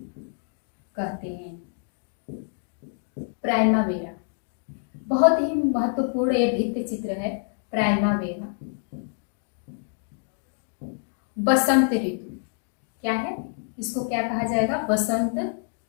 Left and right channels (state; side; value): silent; right; 60 dB below the other